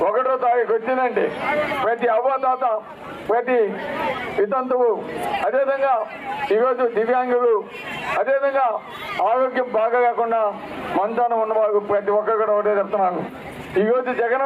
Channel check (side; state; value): both; identical; correlation 1.00